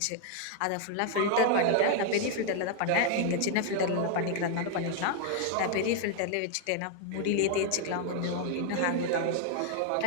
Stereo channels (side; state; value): both; different; correlation 0.00